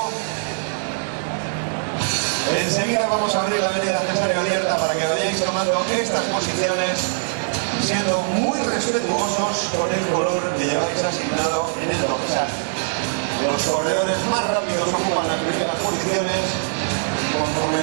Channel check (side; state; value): left; silent; digital silence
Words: Enseguida vamos a abrir la media de abierta para que vayáis tomando estas posiciones, siendo muy respetuosos con el color que lleváis asignado en el dorsal. Los corredores más rápidos ocupan las primeras posiciones,